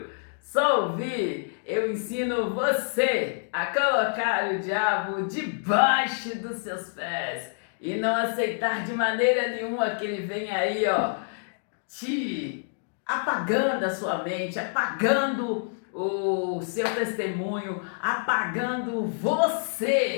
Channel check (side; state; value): right; silent; digital silence